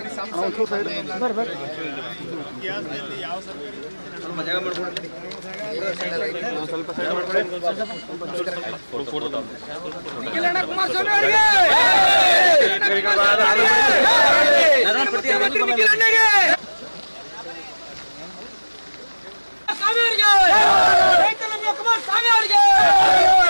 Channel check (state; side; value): inverted; both; correlation -1.00